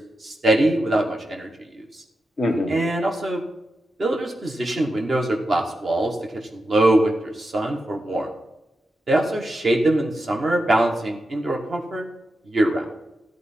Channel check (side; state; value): both; normal; correlation 0.88